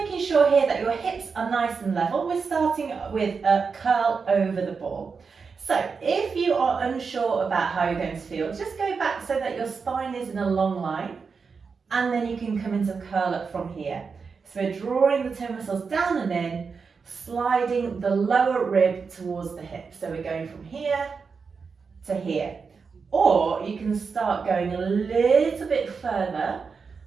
sure here that your hips are nice and level. We're starting with a curl over the ball. So if you are unsure about how you're going to feel, just go back so that your spine is in a long line, and then you can come into curl up from here. So we're drawing the toe muscles down and in, sliding the lower rib towards the hip. So we're going from here to here. Or you can start going a little bit further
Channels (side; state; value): left; quieter; 5.3 dB